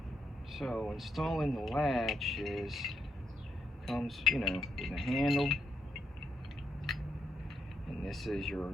So installing the latch comes, you know, with a handle, and this is your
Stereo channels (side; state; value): both; normal; correlation 0.80